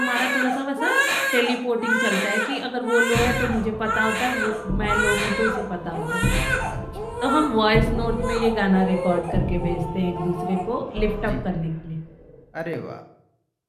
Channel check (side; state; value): both; identical; correlation 1.00